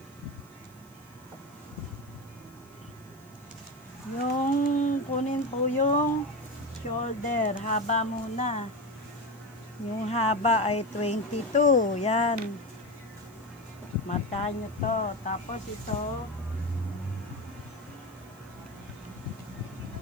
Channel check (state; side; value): noise; right; hiss, 27 dB below the sound